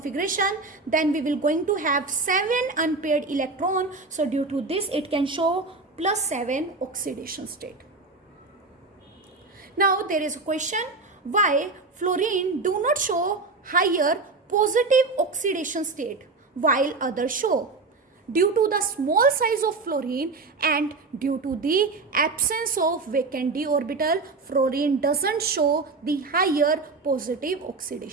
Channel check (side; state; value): left; quieter; 3.8 dB